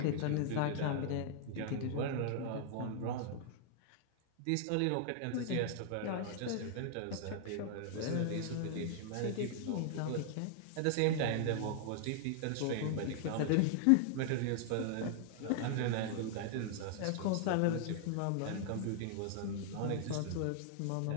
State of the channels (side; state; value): both; different; correlation -0.01